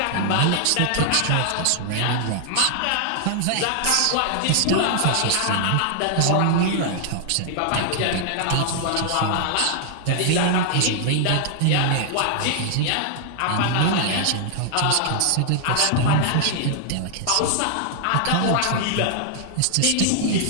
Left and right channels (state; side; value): different; both; correlation -0.01